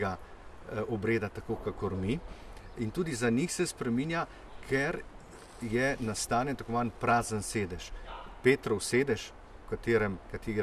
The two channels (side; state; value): both; identical; correlation 1.00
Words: obreda tako kakor mi, in tudi za njih se spreminja, ker je nastane tako manj prazen sedež. Petrov sedež,